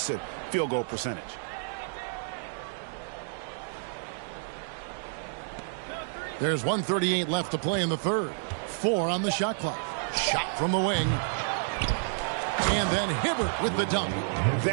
field goal percentage. There's 1:38 left to play in the third. 4 on the shot clock. Shot from the wing. And then Hibbert with the dunk.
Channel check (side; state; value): left; silent; digital silence